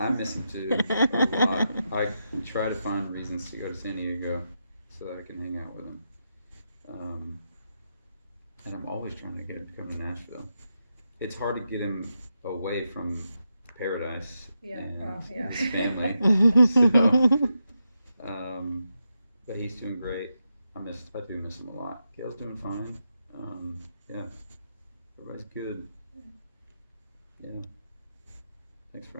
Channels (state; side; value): inverted; both; correlation -0.86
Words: miss him too a lot. I try to find reasons to go to San Diego so that I can hang out with him. And I'm always trying to get him to come to Nashville. It's hard to get him away from paradise Yeah, and well, yeah. his family. So, but he's doing great. I do miss him a lot. Gail's doing fine. Yeah, everybody's good. Yeah. Thanks